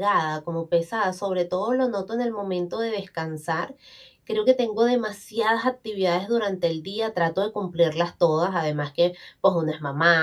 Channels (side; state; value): both; identical; correlation 1.00